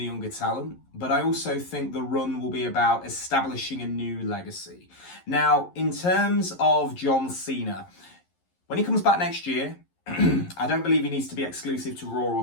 younger talent, but I also think the run will be about establishing a new legacy. Now, in terms of John Cena, when he comes back next year, I don't believe he needs to be exclusive to Raw or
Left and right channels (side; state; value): right; late; 11 ms